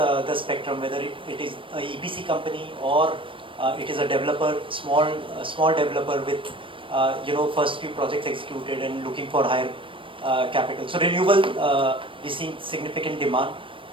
spectrum, whether it is a EPC company or it is a developer, small developer with first few projects executed and looking for higher capital. So renewable, we see significant demand.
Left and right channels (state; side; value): late; left; 0.25 ms